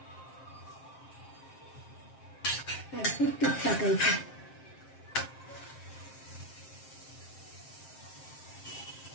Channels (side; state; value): right; late; 7.6 ms